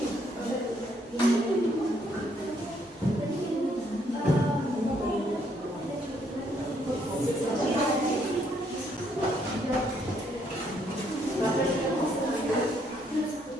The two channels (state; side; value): normal; both; correlation 0.70